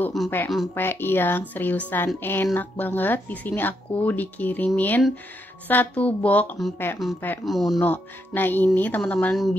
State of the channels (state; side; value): normal; both; correlation 0.79